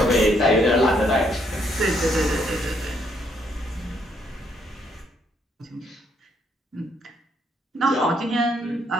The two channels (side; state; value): both; normal; correlation 0.71